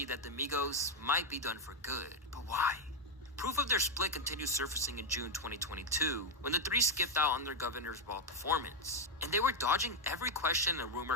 that the Migos might be done for good. But why? Proof of their split continued surfacing in June 2022 when the 3 skipped out on their Governor's Ball performance, and they were dodging every question and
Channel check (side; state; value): both; normal; correlation 0.02